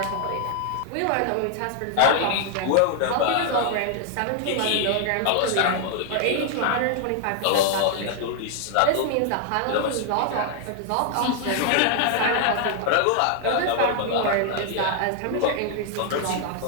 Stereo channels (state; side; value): different; both; correlation 0.00